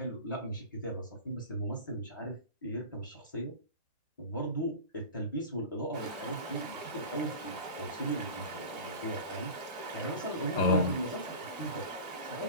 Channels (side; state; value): both; inverted; correlation -0.32